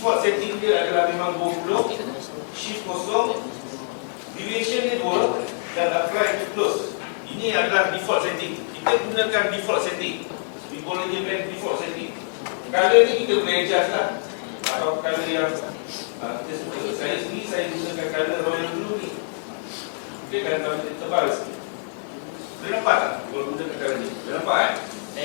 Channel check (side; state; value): right; silent; digital silence